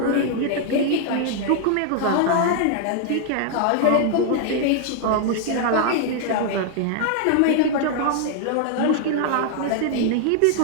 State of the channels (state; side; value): different; both; correlation 0.00